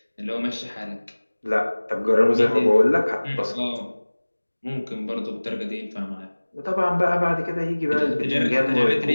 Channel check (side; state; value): both; inverted; correlation -1.00